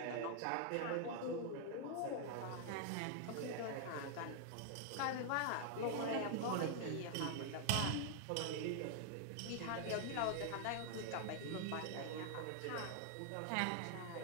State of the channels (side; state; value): both; different; correlation 0.00